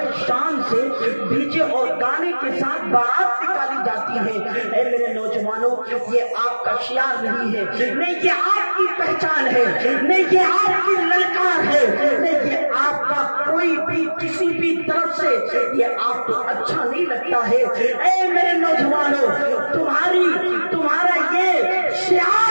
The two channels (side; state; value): both; inverted; correlation -1.00